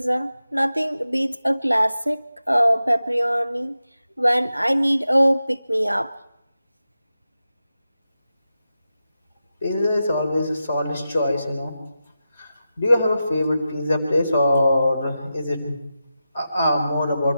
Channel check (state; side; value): inverted; both; correlation -0.91